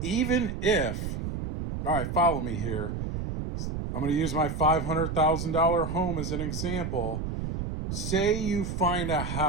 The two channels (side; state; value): right; noise; rumble, 4 dB below the sound